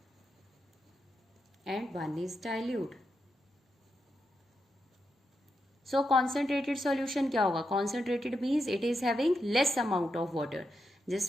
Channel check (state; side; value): normal; both; correlation 0.85